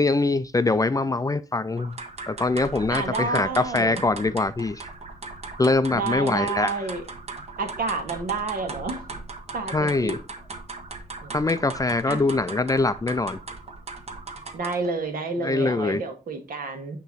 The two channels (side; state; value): both; normal; correlation 0.54